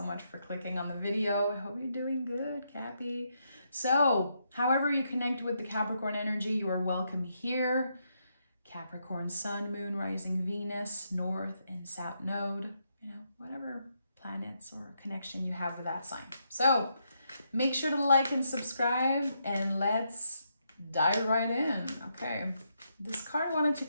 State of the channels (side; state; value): both; inverted; correlation -0.79